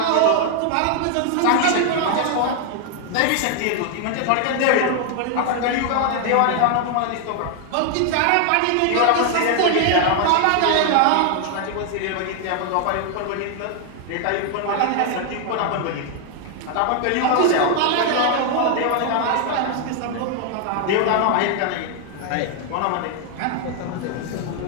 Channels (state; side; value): different; both; correlation 0.00